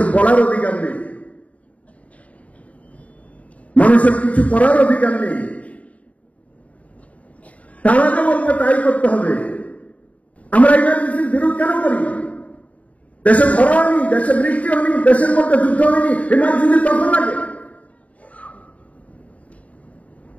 বলার অধিকার নেই, মানুষের কিছু করার অধিকার নেই। তারা যে বলবে তাই করতে হবে। আমরা ইমার্জেন্সির বিরোধ কেন করি? দেশে খরা হয়নি, দেশে বৃষ্টি হয়নি, দেশের মধ্যে যুদ্ধ হয়নি, ইমার্জেন্সি তখন লাগে।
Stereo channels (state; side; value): late; right; 0.068 ms